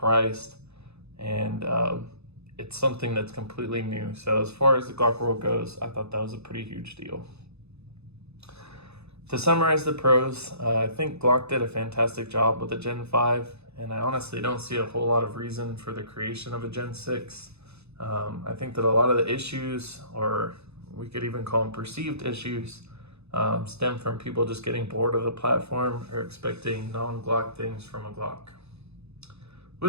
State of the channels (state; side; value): late; left; 0.80 ms